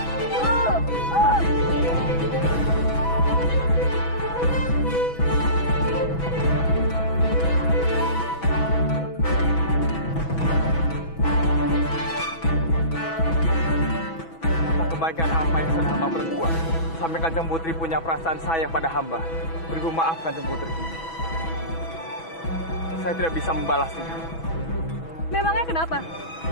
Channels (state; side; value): late; right; 6.1 ms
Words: Kebaikan apa yang sudah hamba perbuat sampai Kanjeng Putri punya perasaan sayang pada hamba. Beribu maaf Kanjeng Putri. Saya tidak bisa membalasnya. Memangnya kenapa?